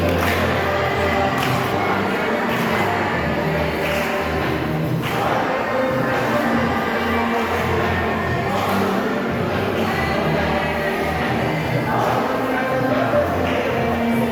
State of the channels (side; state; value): both; identical; correlation 1.00